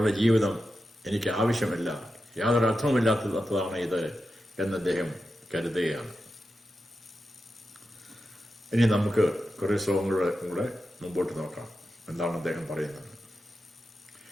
ജീവിതം എനിക്ക് ആവശ്യമില്ല, യാതൊരു അർത്ഥവുമില്ലാത്തതാണ് ഇത് എന്ന് അദ്ദേഹം കരുതുകയാണ്. ഇനി നമുക്ക് കുറെ ശ്ലോകങ്ങളുടെ കൂടെ മുമ്പോട്ട് നോക്കാം. എന്താണ് അദ്ദേഹം പറയുന്നത്?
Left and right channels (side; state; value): both; normal; correlation 0.90